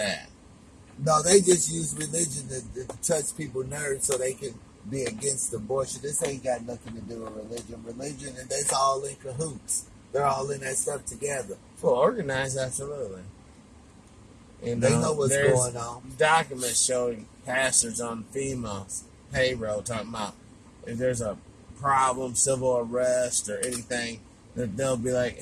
No, they just use religion to touch people's nerves so they can be against abortion. This ain't got nothing to do with religion. Religion, and that's all in cahoots. They're all in that stuff together. Well, organized, absolutely. You They know what's there's going on. Documents showing pastors on FEMA's payroll talking about if there's a problem, civil arrest, or anything, that they'll be like,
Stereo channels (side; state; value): both; identical; correlation 1.00